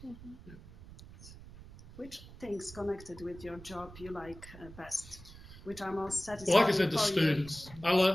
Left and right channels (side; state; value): right; noise; rumble, 17 dB below the sound